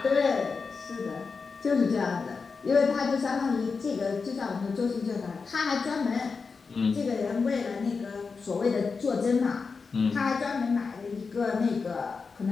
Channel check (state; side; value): quieter; right; 4.9 dB